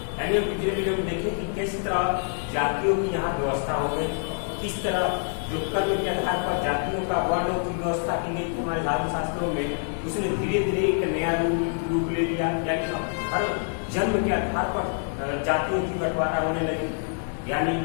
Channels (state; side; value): silent; right; 61 dB below the other